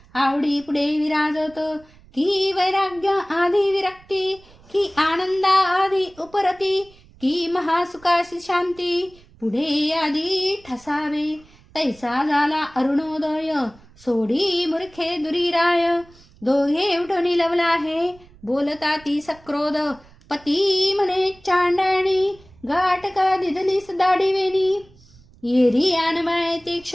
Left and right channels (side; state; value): right; noise; rumble, 26 dB below the sound